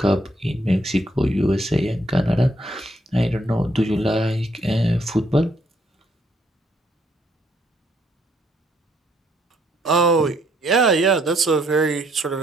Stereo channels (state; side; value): normal; both; correlation 0.70